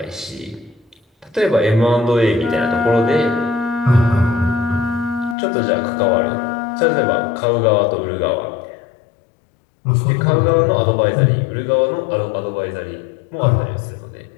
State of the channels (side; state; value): right; drops out; at 5.4 s